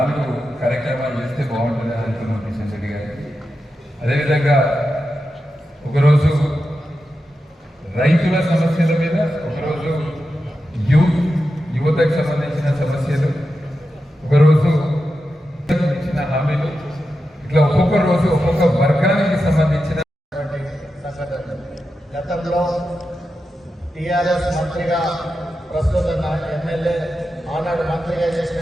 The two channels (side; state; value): both; normal; correlation 0.90